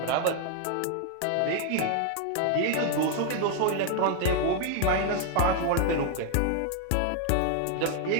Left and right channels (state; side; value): different; both; correlation 0.00